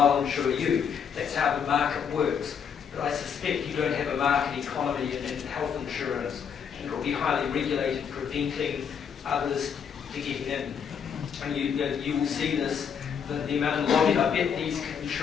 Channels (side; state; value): right; quieter; 7.3 dB